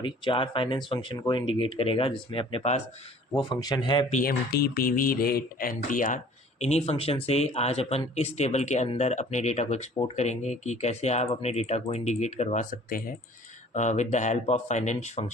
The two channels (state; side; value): normal; both; correlation 0.51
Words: फंक्शन को इंडिकेट करेगा, जिसमें अपने पास वो फंक्शन है पीएमटी, पीवी, रेट, एनपीआर। इन्हीं फंक्शन से आज अपन इस टेबल के अंदर अपने डेटा को एक्सपोर्ट करेंगे कि कैसे आप अपने डेटा को इंडिकेट करवा सकते हैं with the help of finance